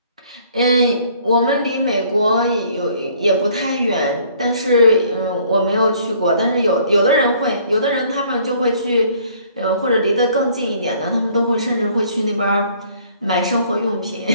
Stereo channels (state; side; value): inverted; both; correlation -0.59